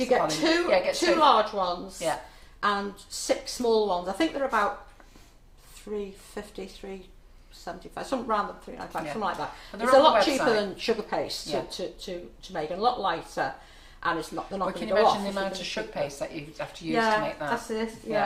get two large ones, and 6 small ones. I think they're about $3.50, $3.75, something around the $3.95, something like that. It's a lot cheaper than sugar paste to make, and a lot lighter, and it's not. They're not going to go off. Can you imagine the amount of sugar paste that you have to use to make that? That's it.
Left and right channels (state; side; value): identical; both; correlation 1.00